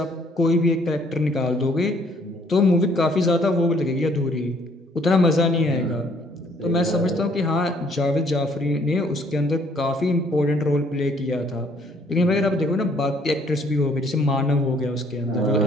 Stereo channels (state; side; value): normal; both; correlation 0.63